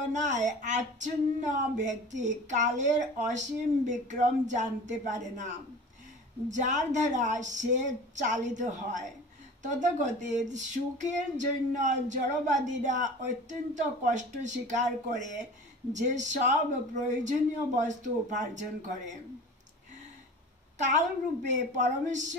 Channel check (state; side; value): normal; both; correlation 0.38